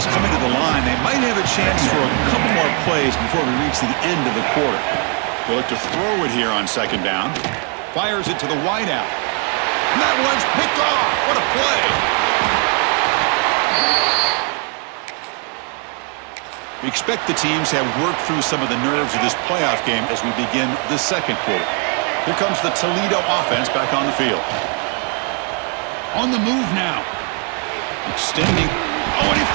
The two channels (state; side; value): quieter; left; 39.0 dB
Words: coming to the line. They might have a chance for a couple more plays before we reach the end of the quarter. They'll look to throw it here on second down. Fires it to the wideout. And that one's picked off. What a play. We expect the teams have worked through some of the nerves of this playoff game as we begin the second quarter. Here comes the Toledo offense back on the field. On the move now. Extending. Oh, and he